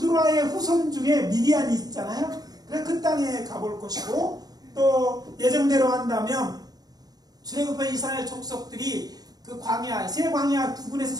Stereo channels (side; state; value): left; late; 0.19 ms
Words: 후손 중에 미디안이 있잖아요. 그래서 그 땅에 가볼 것이고, 또 예정대로 한다면 출애굽한 이스라엘 족속들이 그 광야, 새 광야 부근에서